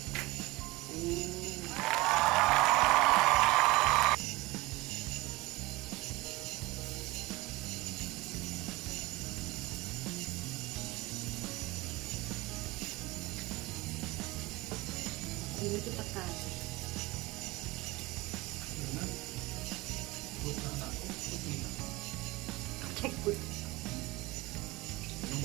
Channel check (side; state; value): left; quieter; 21.3 dB